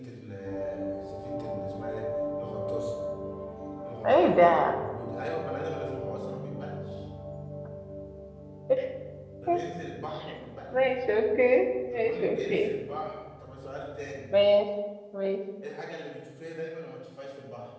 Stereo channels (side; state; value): both; identical; correlation 1.00